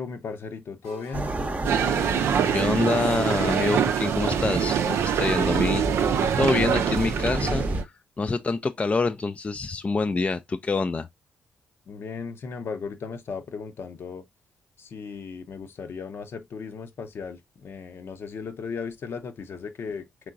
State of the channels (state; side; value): normal; both; correlation 0.69